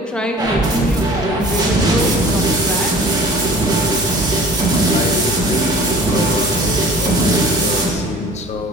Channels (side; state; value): both; normal; correlation 0.45